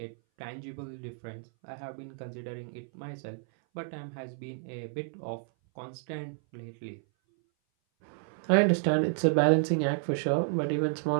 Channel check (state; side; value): silent; left; 57 dB below the other